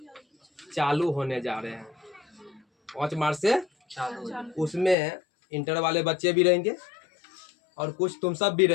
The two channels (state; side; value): drops out; right; at 5.0 s